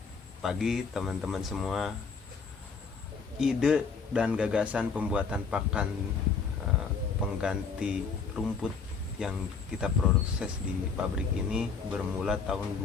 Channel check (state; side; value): quieter; right; 5.4 dB